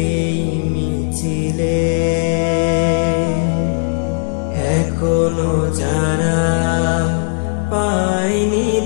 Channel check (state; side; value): silent; right; digital silence